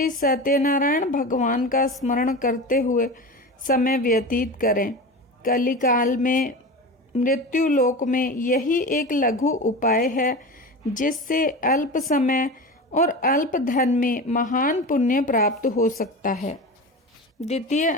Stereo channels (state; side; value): normal; both; correlation 0.28